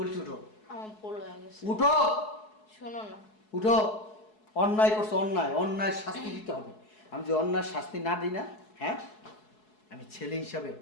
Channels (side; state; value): right; late; 4.7 ms